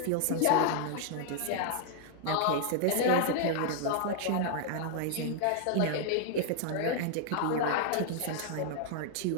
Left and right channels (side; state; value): both; different; correlation 0.00